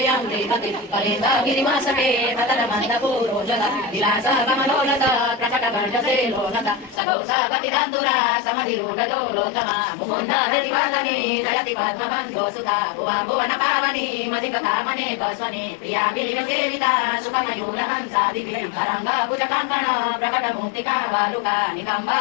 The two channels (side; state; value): right; drops out; at 7.0 s